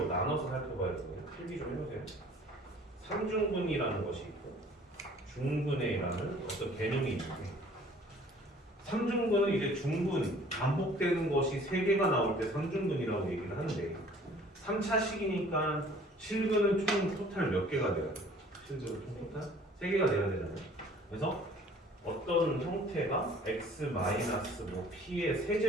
나눠서 살펴봐야 되거든요. 필기 좀 해보세요. 3중근이라는 것이 있고 중근회라는 어떤 개념이 있는데 3중근은 이제 중근, 반복되는 것이 3개가 나올 때 3중근이라고 얘기를 하는데 3차식이니까 실근은 총 토탈 몇 개가 돼야 돼요? 실근은 총 토탈 3개가 돼야 되잖아요. 그래서 어떤 형태가 x 뭐 p의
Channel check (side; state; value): both; normal; correlation 0.53